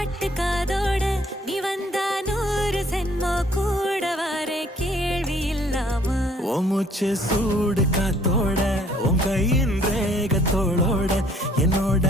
காதோட நீ வந்தா 100 சென்மோ கூட வர கேள்வி இல்லாம மூச்சு சூடு காத்தோட உன் கையின் ரேகத்தோளோட என்னோட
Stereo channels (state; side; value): normal; both; correlation 0.61